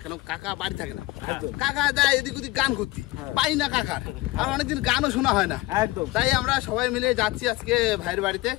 কেন কাকা বাড়ি থাকে না। কাকা দেয় এদিক ওদিক গান করতে, পাই না কাকার, আর অনেকদিন গানও শোনা হয় না। তাই আমরা সবাই মিলে যাচ্ছি আজকে ভাইয়ের বাড়িতে।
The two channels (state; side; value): quieter; right; 19.8 dB